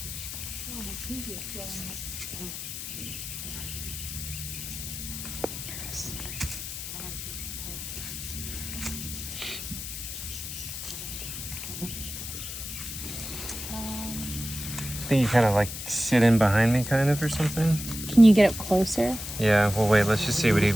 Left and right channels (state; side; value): noise; left; hiss, 8 dB below the sound